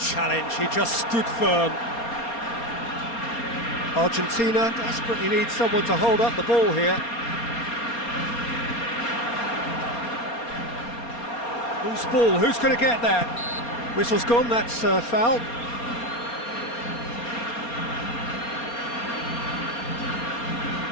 he just stood firm. Argentina desperately needs someone to hold up the ball here. Who's ball? Who's going to get that? Whistle's gone, that's foul.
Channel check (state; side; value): late; right; 4.3 ms